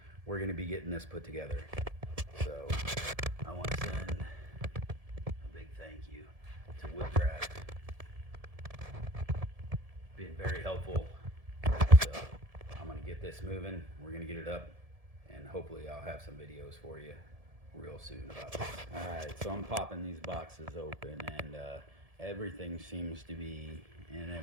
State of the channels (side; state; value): left; late; 1.7 ms